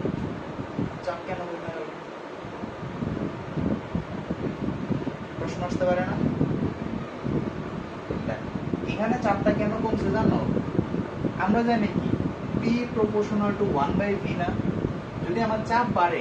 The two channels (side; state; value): both; identical; correlation 1.00